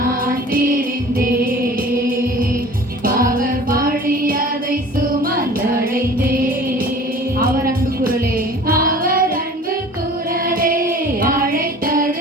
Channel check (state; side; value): normal; both; correlation 0.44